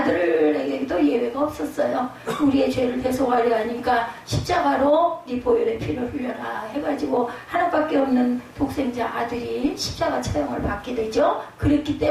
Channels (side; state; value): both; identical; correlation 1.00